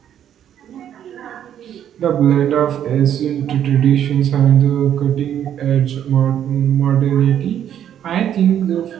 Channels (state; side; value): quieter; left; 10.0 dB